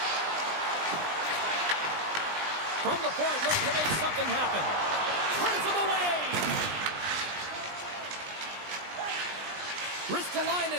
From the point, looks to make something happen. Turns him away.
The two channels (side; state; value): left; late; 20 ms